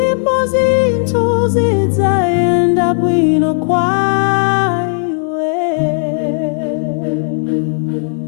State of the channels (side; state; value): right; silent; 70 dB below the other